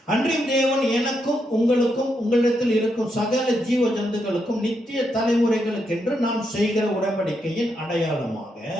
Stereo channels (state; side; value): normal; both; correlation 0.81